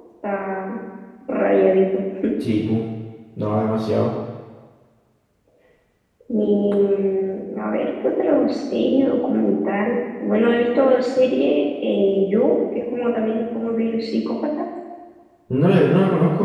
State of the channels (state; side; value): identical; both; correlation 1.00